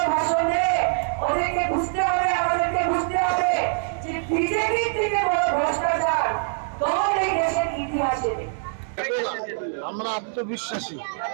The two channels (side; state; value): left; silent; 63 dB below the other